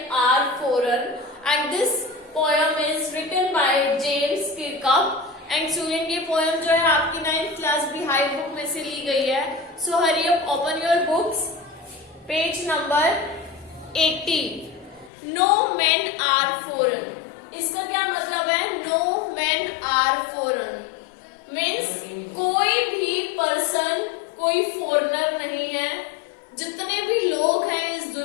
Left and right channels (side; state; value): right; drops out; at 15.1 s